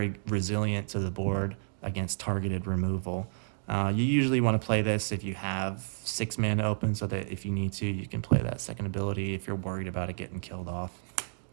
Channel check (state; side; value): silent; left; digital silence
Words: resilient to the board against targeted removal. You usually want to play this if you have 6 mana open, so that if you need to, you can play that second ability if you're worried about it getting killed off.